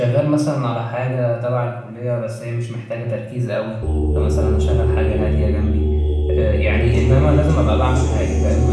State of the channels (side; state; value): both; identical; correlation 1.00